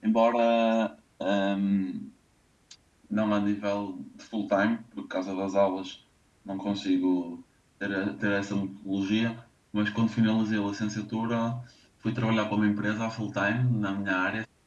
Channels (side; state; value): both; identical; correlation 1.00